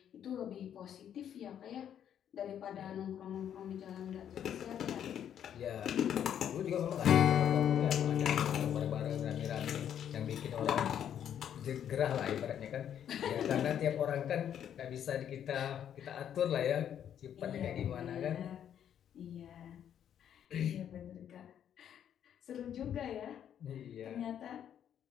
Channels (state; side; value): quieter; right; 9.5 dB